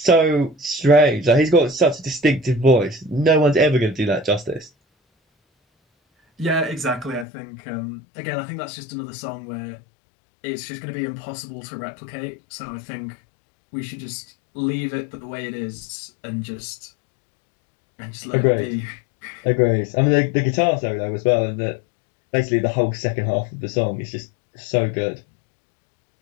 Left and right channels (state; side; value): drops out; right; at 7.2 s